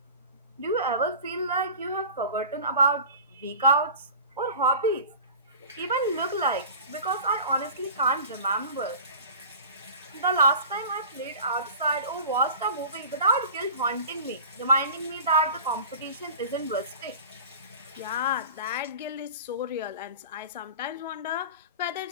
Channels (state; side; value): inverted; both; correlation -0.38